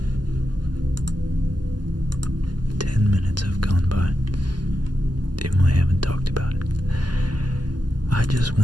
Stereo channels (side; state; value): left; late; 0.70 ms